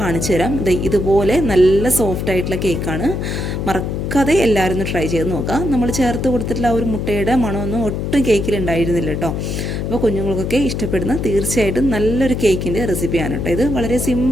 തരാം. ഇതുപോലെ നല്ല സോഫ്റ്റ് ആയിട്ടുള്ള കേക്കാണ്. മറക്കാതെ എല്ലാവരും ഒന്ന് ട്രൈ ചെയ്ത് നോക്കാം. നമ്മൾ ചേർത്ത് കൊടുത്തിട്ടുള്ള ആ ഒരു മുട്ടയുടെ മണമൊന്നും ഒട്ടും കേക്കിൽ ഉണ്ടായിരുന്നില്ല കേട്ടോ. അപ്പോൾ കുഞ്ഞുങ്ങൾക്കൊക്കെ ഇഷ്ടപ്പെടുന്ന തീർച്ചയായിട്ടും നല്ലൊരു കേക്കിൻ്റെ റെസിപ്പിയാണ് കേട്ടോ. ഇത് വളരെ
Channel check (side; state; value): left; noise; hum, 3 dB below the sound